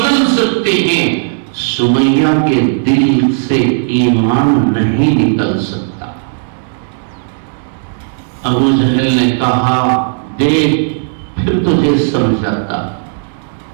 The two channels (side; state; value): left; silent; digital silence